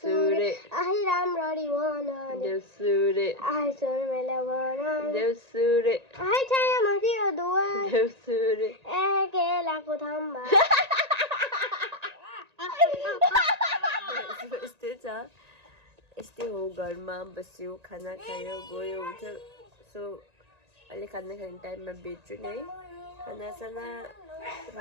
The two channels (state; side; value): late; left; 1.9 ms